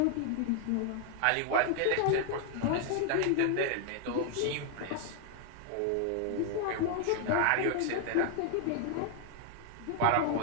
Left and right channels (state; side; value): different; both; correlation 0.00